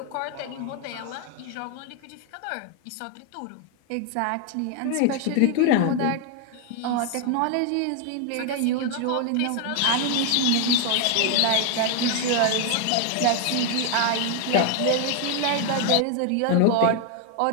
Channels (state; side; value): different; both; correlation 0.01